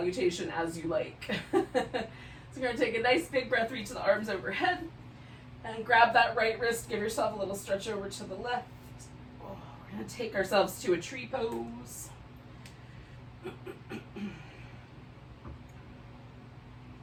as you like. So you're going to take a nice big breath, reach the arms overhead, and grab that right wrist, give yourself a little stretch over to the left. We're going to take ourselves to a tree pose.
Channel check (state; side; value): identical; both; correlation 1.00